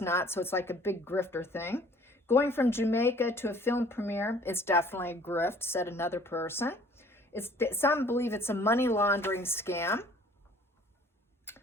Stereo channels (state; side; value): normal; both; correlation 0.54